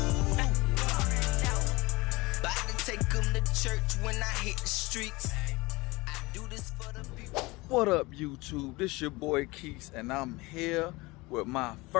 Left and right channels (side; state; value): right; quieter; 22.9 dB